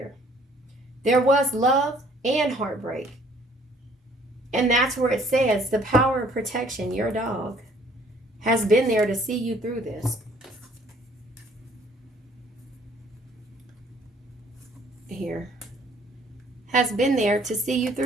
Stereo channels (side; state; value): both; normal; correlation 0.59